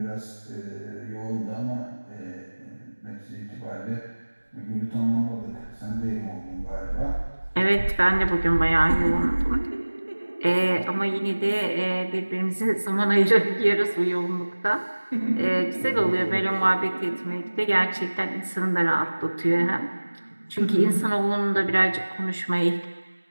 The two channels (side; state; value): both; inverted; correlation -1.00